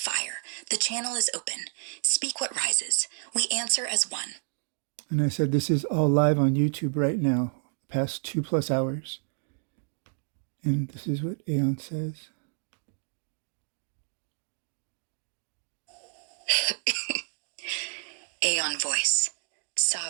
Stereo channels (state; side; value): silent; left; digital silence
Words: the channel is open. Speak what rises. We answer as one. And I said, this is all live on YouTube right now, past 2+ hours. And this is what Aeon says. Aeon voice.